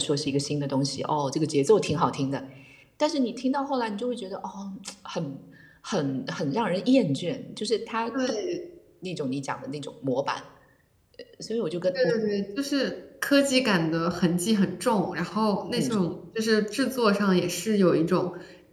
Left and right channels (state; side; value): identical; both; correlation 1.00